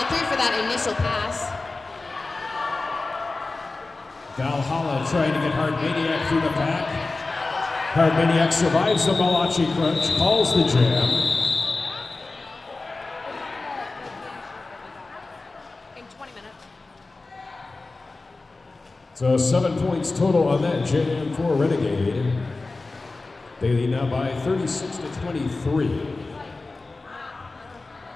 through for that initial pass. Valhalla trying to get Hard Maniac through the pack. Hard Maniac survives the Malachi crunch, calls the jam. So 7 points total on that jam for Renegade. They lead now by 36-23.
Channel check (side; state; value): right; quieter; 3.5 dB